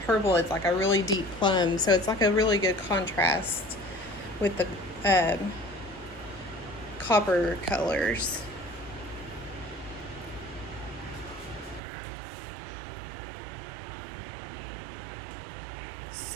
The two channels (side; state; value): left; drops out; at 11.8 s